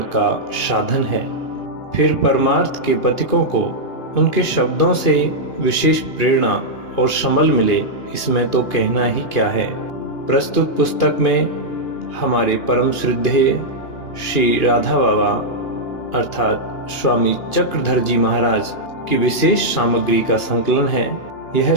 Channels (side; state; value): right; late; 2.9 ms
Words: का साधन है। फिर परमार्थ के पथिकों को उनके शब्दों से विशेष प्रेरणा और समल मिले, इसमें तो कहना ही क्या है। प्रस्तुत पुस्तक में हमारे परम श्रद्धेय श्री राधा बाबा अर्थात स्वामी चक्रधर जी महाराज की विशेष सामग्री का संकलन है। यह